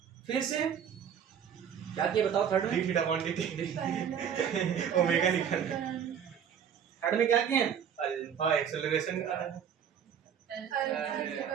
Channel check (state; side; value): quieter; left; 8.3 dB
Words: फिर से क्या किए बताओ थर्ड में थीटा अपॉन dt ओमेगा निकाल। थर्ड में क्या किए अल्फा एक्सेलरेशन निकाला है।